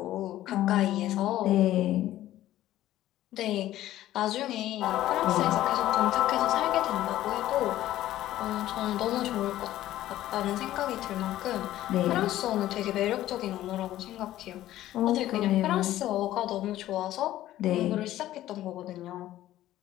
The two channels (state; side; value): quieter; right; 14.0 dB